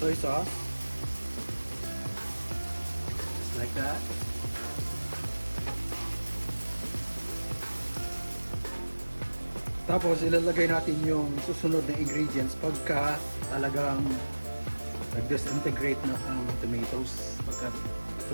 sauce, just like that. Tapos ilalagay natin yung susunod na ingredients pagka talagang nag-disintegrate na ang tomatoes, pagka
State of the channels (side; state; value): both; inverted; correlation -1.00